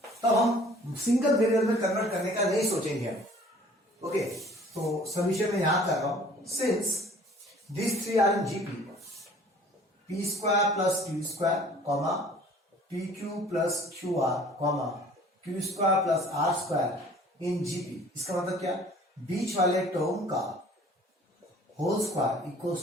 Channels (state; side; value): normal; both; correlation 0.51